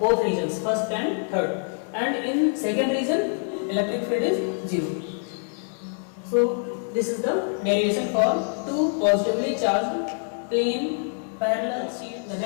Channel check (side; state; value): right; silent; 58 dB below the other